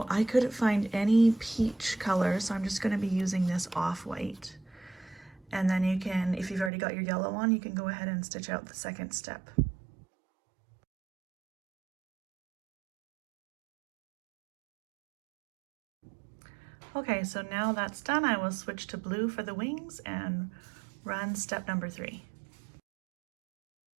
I couldn't find any peach color, so I'm just going to be using this off-white. And then you can, if you've already got your yellow on, you can go ahead and stitch out the second step. Okay, so now that's done, I will switch to blue for the wings and run step number 3.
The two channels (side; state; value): left; drops out; at 6.7 s